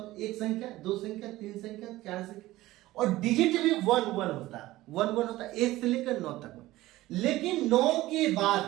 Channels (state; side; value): quieter; left; 17.1 dB